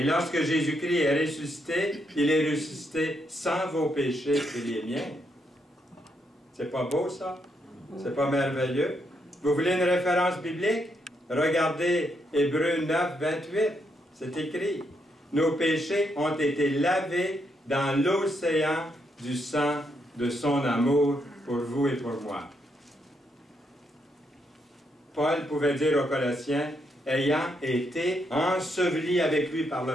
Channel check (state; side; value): normal; both; correlation 0.78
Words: lorsque Jésus-Christ est ressuscité, il est ressuscité sans vos péchés et les miens. C'est pas beau, ça? C'est pas merveilleux? Vous voulez une référence biblique? Regardez Hébreux 9, 28. C'est écrit. Nos péchés ont été lavés dans l'océan du sang de son amour pour vous et pour moi. Paul pouvait dire aux Colossiens, ayant été ensevelis avec lui par